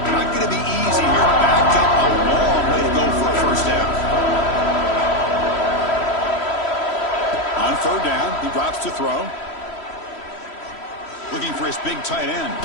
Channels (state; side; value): late; right; 3.1 ms